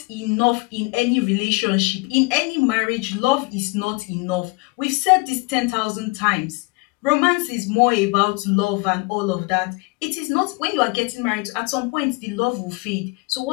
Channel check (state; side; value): quieter; right; 27.1 dB